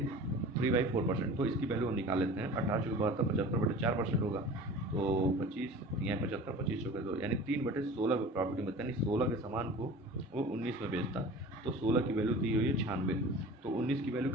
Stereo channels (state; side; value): normal; both; correlation 0.39